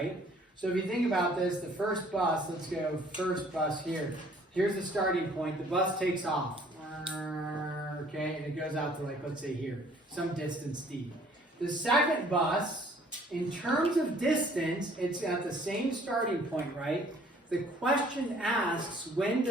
So if you think about this, the first bus, let's go first bus here. Here's the starting point. The bus takes off. Okay, and it goes out to, like, let's say here, some distance D. The second bus, in terms of distance, it's at the same starting point, right? The question asks, when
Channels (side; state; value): both; normal; correlation 0.57